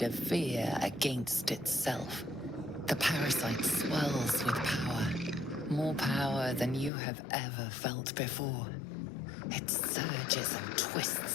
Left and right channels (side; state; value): right; drops out; at 6.9 s